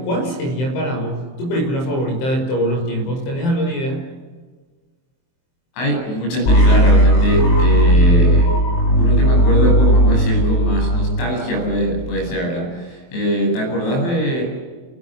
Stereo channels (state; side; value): late; right; 23 ms